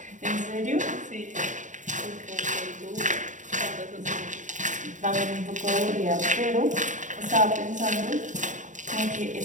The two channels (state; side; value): late; left; 0.36 ms